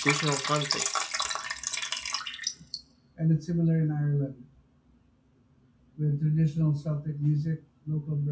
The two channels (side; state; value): both; identical; correlation 1.00